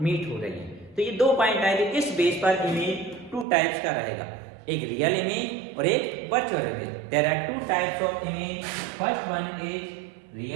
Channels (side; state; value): left; drops out; at 3.5 s